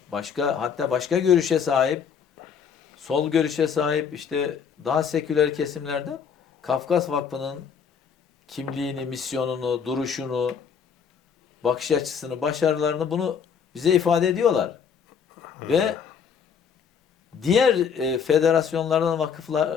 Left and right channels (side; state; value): right; quieter; 6.9 dB